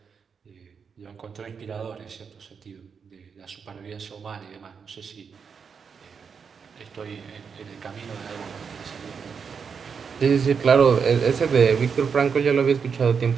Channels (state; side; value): quieter; left; 6.2 dB